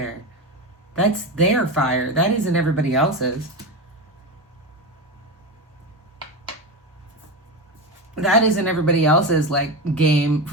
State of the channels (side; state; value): both; normal; correlation 0.19